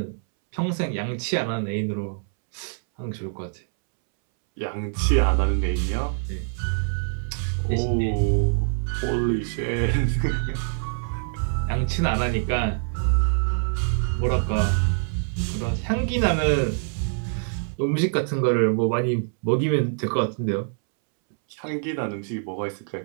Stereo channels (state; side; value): silent; left; 62 dB below the other